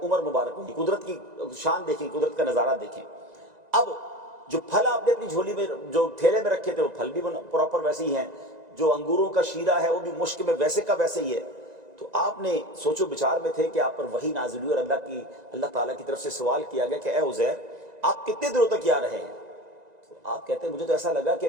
उम्र मुबारक होगी। कुदरत की शान देखें, कुदरत का नज़ारा देखें। अब जो फल आपने अपनी झोली में, जो थैले में रखे थे, वो फल भी प्रॉपर वैसे ही हैं, जो अंगूरों का शीरा है वो भी मुश्क में वैसे का वैसे ही है। तो आपने सोचो विचार में थे कि आप पर वही नाज़िल हुई और अल्लाह ताला की तरफ से सवाल किया गया कि ए उज़ैर, आप कितने दिनों तक यहाँ रहे हैं? तो आप कहते हैं मुझे तो ऐसा लगा कि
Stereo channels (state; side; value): late; left; 1.9 ms